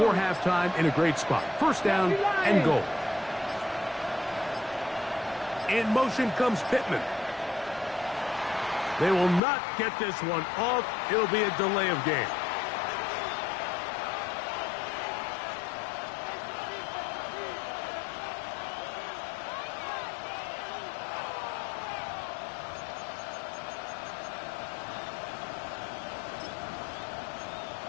halftime in a great spot. First down and goal. In motion comes Pittman. They will not get this one off. It'll be a delay of game.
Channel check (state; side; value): drops out; right; at 9.4 s